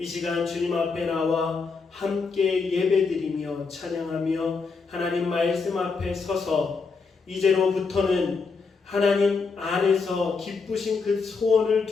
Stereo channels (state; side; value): quieter; right; 4.7 dB